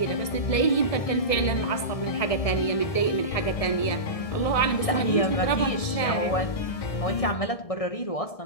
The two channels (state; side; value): late; right; 1.7 ms